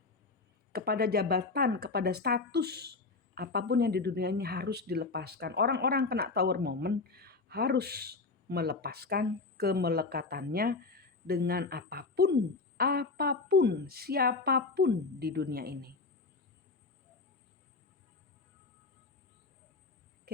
kepada jabatan, kepada status. Apapun yang di dunia ini harus dilepaskan. Orang-orang kena Tower Moment harus melepaskan kemelekatannya dengan apapun, siapapun di dunia ini.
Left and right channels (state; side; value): quieter; right; 4.0 dB